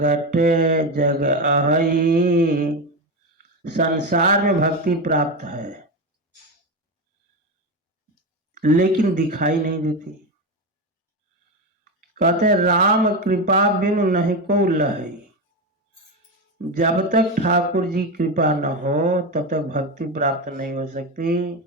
जग अहई। संसार में भक्ति प्राप्त है लेकिन दिखाई नहीं देती। कहते हैं राम कृपा बिनु नहीं को लहई। जब तक ठाकुर जी कृपा न हो तब तक भक्ति प्राप्त नहीं हो सकती।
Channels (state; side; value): normal; both; correlation 0.15